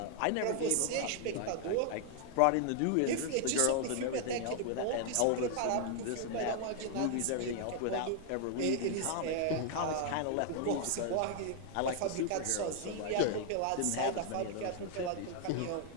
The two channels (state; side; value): different; both; correlation 0.00